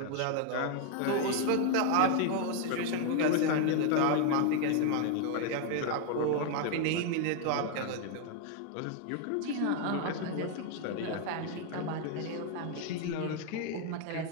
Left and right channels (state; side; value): different; both; correlation 0.01